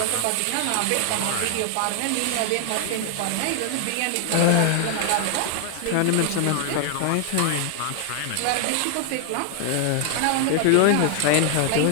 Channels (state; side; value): different; both; correlation 0.00